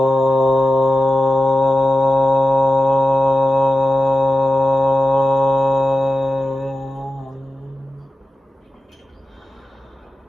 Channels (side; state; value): both; normal; correlation 0.92